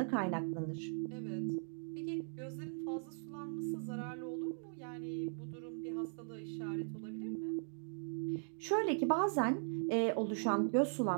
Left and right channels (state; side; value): silent; left; digital silence